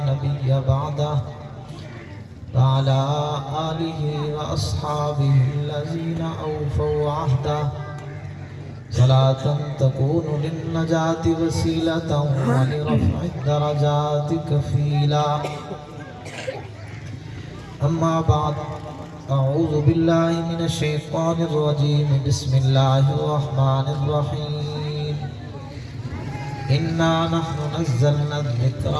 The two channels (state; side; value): identical; both; correlation 1.00